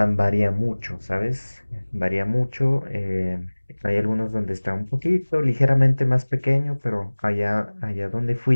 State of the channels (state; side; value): inverted; both; correlation -1.00